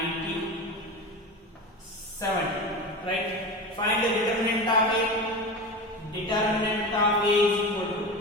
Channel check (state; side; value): normal; both; correlation 0.27